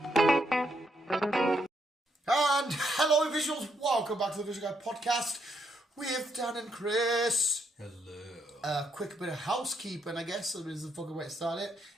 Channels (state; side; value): normal; both; correlation 0.76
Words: hello visuals, welcome back to the Visual Guy podcast with Dan and Chris. Hello. Quick bit of housekeeping, I guess, is the fucking way to start it,